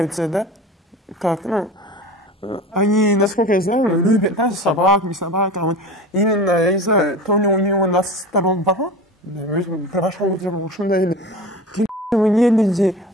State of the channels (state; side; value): normal; both; correlation 0.33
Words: да? Как, они, насколько я знаю, любят, да, собак, не собак, а вот именно, я не знаю, то ли у него на сторон порог, прошел или вы не люди,